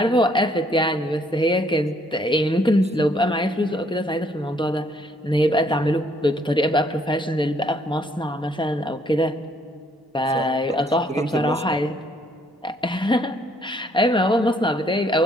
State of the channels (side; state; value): both; normal; correlation 0.67